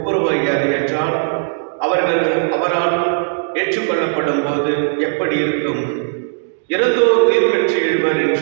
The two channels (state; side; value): silent; left; digital silence